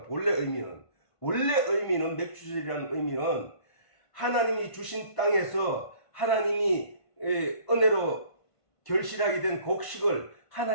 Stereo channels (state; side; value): late; right; 1.5 ms